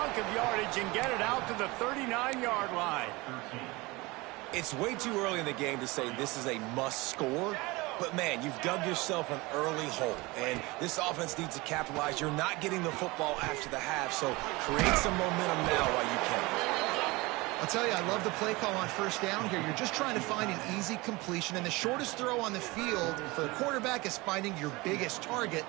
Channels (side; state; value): left; quieter; 23.1 dB